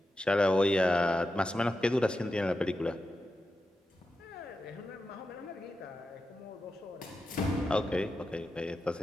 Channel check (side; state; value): both; normal; correlation 0.90